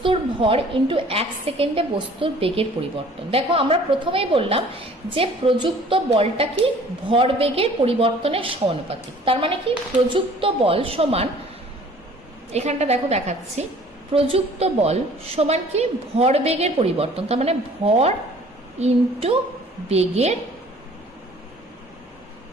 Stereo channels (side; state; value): both; normal; correlation 0.52